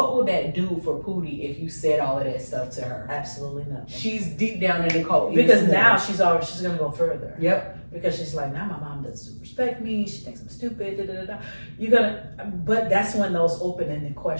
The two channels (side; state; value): both; inverted; correlation -1.00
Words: would that do for Pootie if you said all of that stuff to her? Absolutely nothing. She's deep down in the cult. Because now she's going to go further. Yep. Because she's like, now my mom doesn't respect me, she thinks I'm stupid, but that's when those open-ended